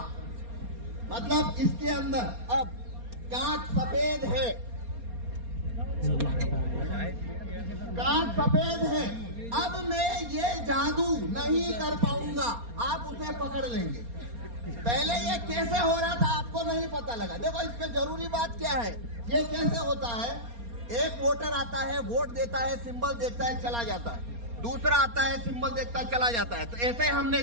मतलब इसके अंदर अब कांच सफेद है, कांच सफेद है। अब मैं ये जादू नहीं कर पाऊंगा, आप उसे पकड़ लेंगे। पहले ये कैसे हो रहा था आपको नहीं पता लगा। देखो इसमें जरूरी बात क्या है, ये कैसे होता है, एक वोटर आता है, वोट देता है, सिंबल देखता है, चला जाता है। दूसरा आता है, सिंबल देखता है, चला जाता है। तो ऐसे हमने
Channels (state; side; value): late; left; 4.3 ms